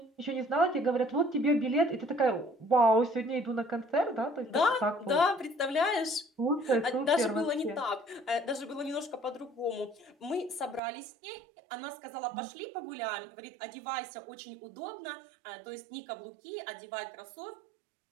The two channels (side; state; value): left; drops out; at 10.8 s